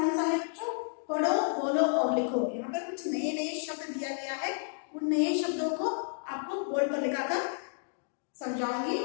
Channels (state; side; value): silent; right; digital silence